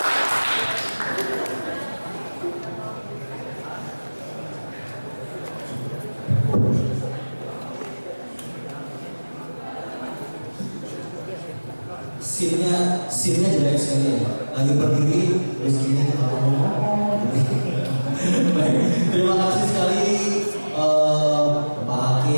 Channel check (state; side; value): inverted; both; correlation -1.00